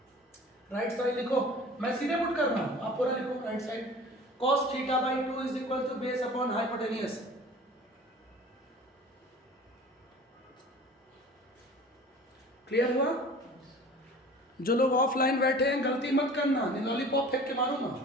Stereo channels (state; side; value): normal; both; correlation 0.43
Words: राइट साइड लिखो, मैं सीधे पुट कर रहा हूं, आप पूरा लिखो right side. cos theta by 2 is equal to base upon hypotenuse. Clear हुआ? जो लोग ऑफलाइन बैठे हैं गलती मत करना, नहीं लॉलीपॉप फेंक के मारो ना।